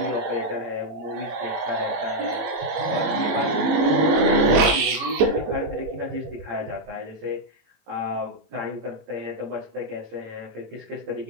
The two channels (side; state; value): left; late; 19 ms